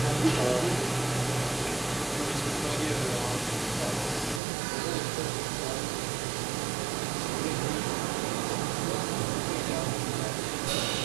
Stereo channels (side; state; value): left; drops out; at 4.4 s